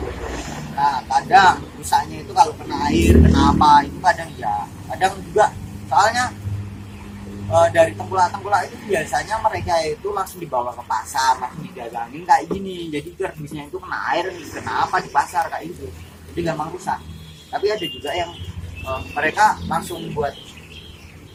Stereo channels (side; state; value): both; identical; correlation 1.00